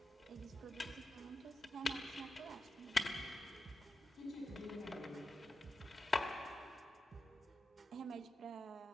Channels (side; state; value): both; normal; correlation 0.90